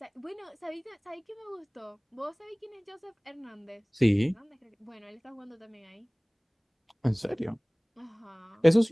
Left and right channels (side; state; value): both; identical; correlation 1.00